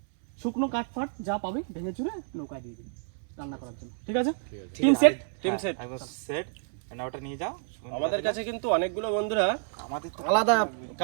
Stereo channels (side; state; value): left; silent; 58 dB below the other